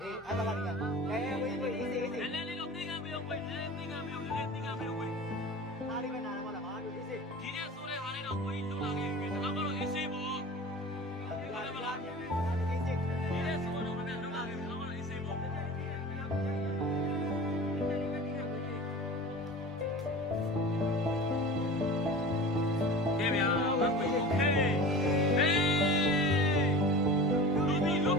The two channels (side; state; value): both; normal; correlation 0.36